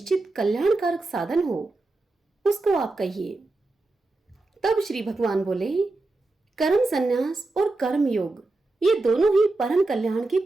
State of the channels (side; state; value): left; quieter; 3.2 dB